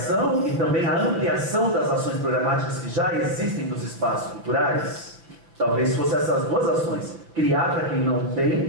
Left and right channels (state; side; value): late; left; 5.8 ms